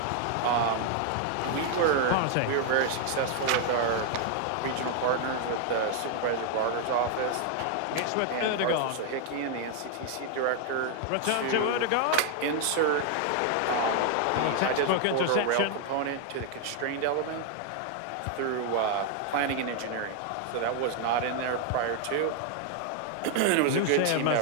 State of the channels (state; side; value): different; both; correlation 0.00